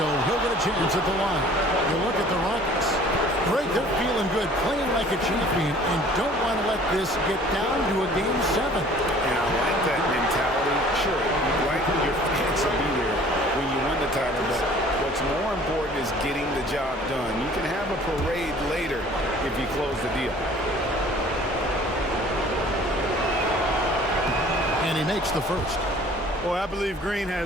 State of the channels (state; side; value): normal; both; correlation 0.51